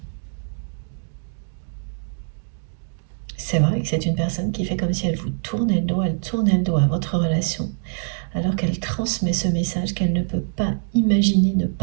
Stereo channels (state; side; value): silent; left; 63 dB below the other